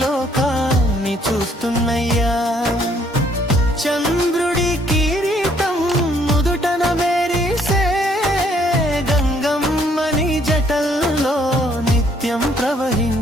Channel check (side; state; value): both; normal; correlation 0.66